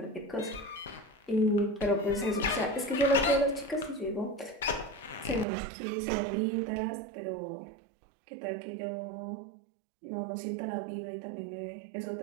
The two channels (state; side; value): drops out; left; at 5.5 s